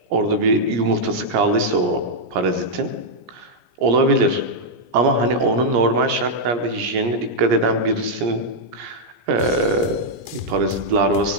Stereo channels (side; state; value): left; late; 17 ms